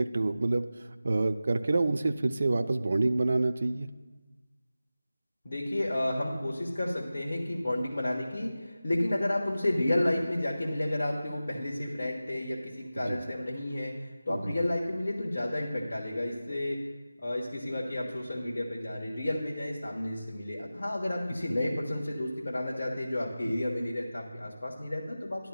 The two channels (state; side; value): inverted; both; correlation -0.95